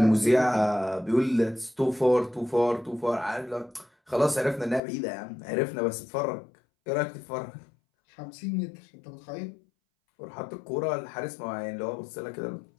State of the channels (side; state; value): right; drops out; at 4.8 s